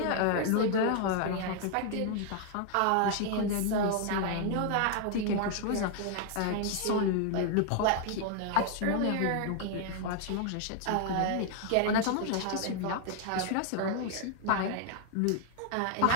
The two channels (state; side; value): different; both; correlation 0.00